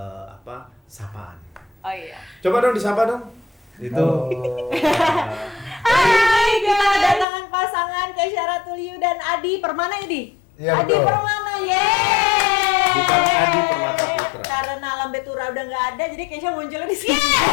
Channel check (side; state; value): right; drops out; at 7.2 s